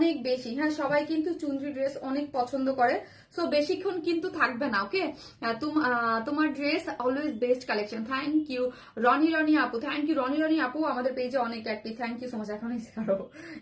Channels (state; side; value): identical; both; correlation 1.00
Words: বেশি। হ্যাঁ সবাই কিন্তু চুনরি ড্রেস অনেক পছন্দ করে, সো বেশিক্ষণ কিন্তু থাকবে না। ওকে তোমার dress always best collection, thank you Roni আপু, থ্যাংক ইউ রনি আপু, আমাদের পেজে অনেক active, thank you so much. এখন